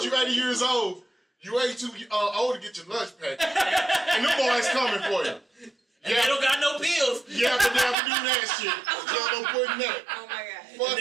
you 80 years old, you ain't too old to get your lunch packed. And them boys coming for you. And they don't got no pills. Yeah, but they have to do that shit. Y'all don't put in that. Oh my God. fuck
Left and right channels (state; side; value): drops out; left; at 8.0 s